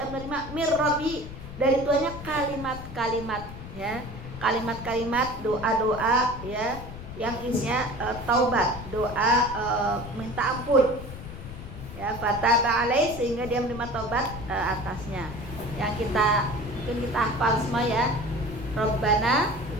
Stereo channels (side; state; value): left; noise; rumble, 11 dB below the sound